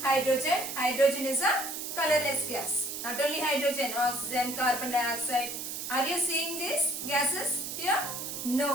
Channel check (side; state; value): right; noise; hiss, 6 dB below the sound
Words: hydrogen. Hydrogen is a colorless gas. Not only hydrogen, oxygen, carbon dioxide. Are you seeing these gases here? No.